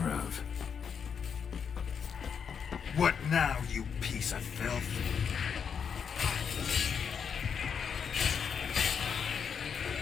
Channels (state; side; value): quieter; right; 6.9 dB